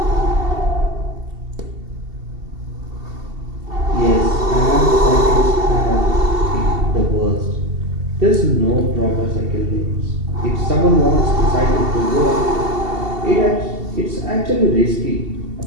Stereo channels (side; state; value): left; late; 2.7 ms